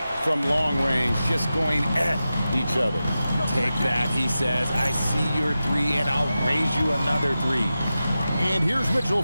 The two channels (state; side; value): inverted; both; correlation -0.93